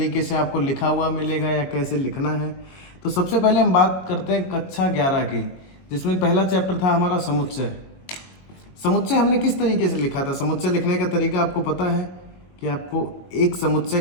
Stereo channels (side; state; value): right; late; 22 ms